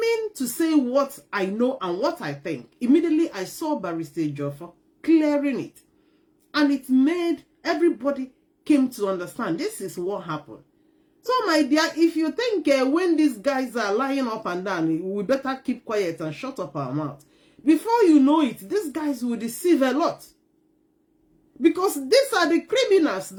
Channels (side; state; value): both; identical; correlation 1.00